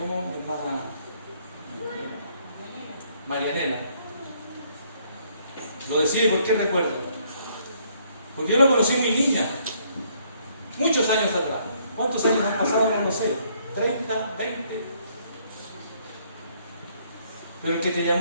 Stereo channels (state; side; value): inverted; both; correlation -0.67